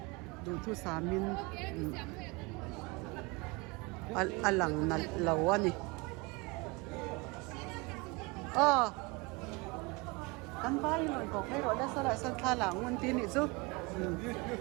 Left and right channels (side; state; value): left; quieter; 26.8 dB